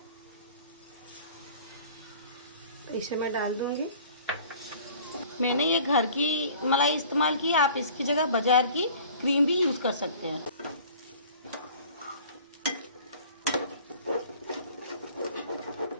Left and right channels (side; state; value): both; inverted; correlation -0.48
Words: तो इसे मैं डाल दूंगी। मैंने ये घर की मलाई इस्तेमाल की, आप इसकी जगह बाजार की क्रीम भी यूज़ कर सकते हैं।